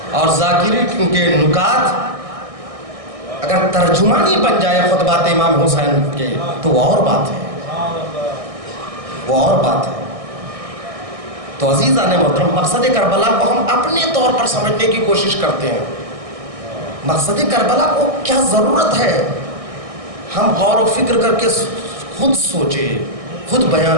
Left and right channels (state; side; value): late; left; 1.6 ms